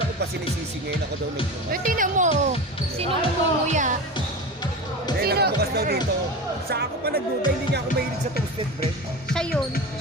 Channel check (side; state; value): both; normal; correlation 0.28